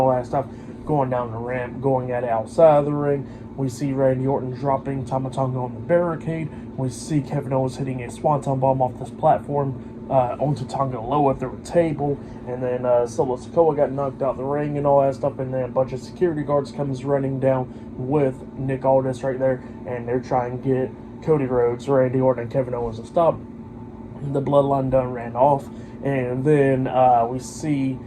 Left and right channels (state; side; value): identical; both; correlation 1.00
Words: that stuff, going down the ramp, going at it outside of the ring. We see Randy Orton dropping Tama Tonga on the barricade. We see Kevin Owens hitting a swanton bomb off this platform onto Tonga Loa through a table. And then Solo Sikoa got knocked out the ring and all that stuff. And then a bunch of security guards comes running down with Nick Aldis right there. And they're trying to get Cody Rhodes, Randy Orton, and Kevin Owens to stop. The Bloodline done ran off. And then we see